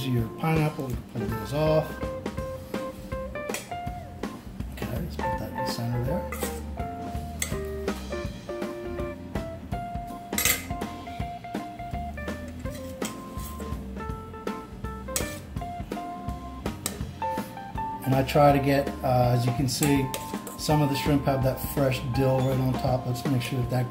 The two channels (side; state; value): both; identical; correlation 1.00